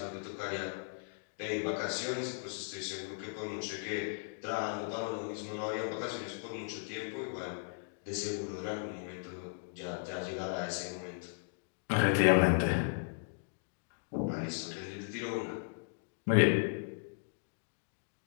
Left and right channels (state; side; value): silent; right; digital silence